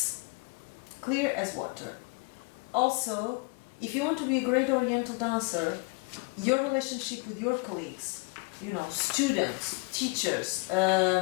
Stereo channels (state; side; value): quieter; right; 29.8 dB